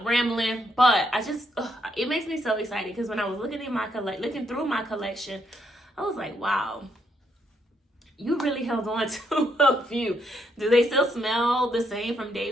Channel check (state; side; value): normal; both; correlation 0.75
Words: rambling, but I just it makes me so excited because when I was looking through my collection, I was like, wow, you really held on to a few. Do they still smell the same from